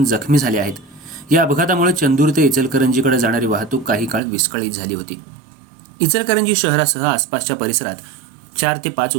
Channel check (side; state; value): left; drops out; at 4.2 s